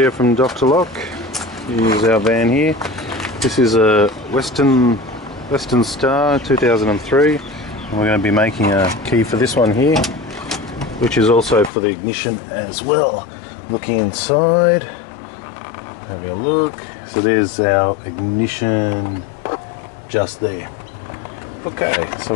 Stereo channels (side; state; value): right; drops out; at 11.7 s